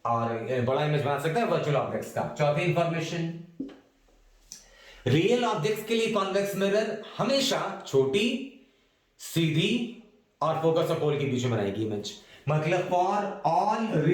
और बड़ा इमेज बना सकता है वर्चुअल ऑब्जेक्ट्स का। चौथी इंफॉर्मेशन, रियल ऑब्जेक्ट्स के लिए कॉन्वेक्स मिरर हमेशा छोटी, सीधी और फोकस और पोल के बीच में बनाएगी इमेज। मतलब फॉर ऑल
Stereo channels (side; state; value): both; identical; correlation 1.00